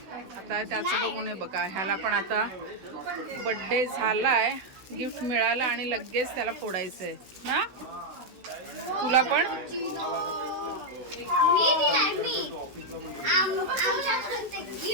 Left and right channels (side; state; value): left; late; 16 ms